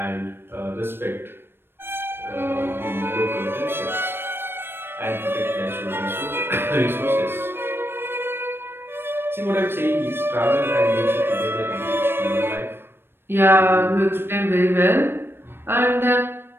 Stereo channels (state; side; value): late; left; 0.11 ms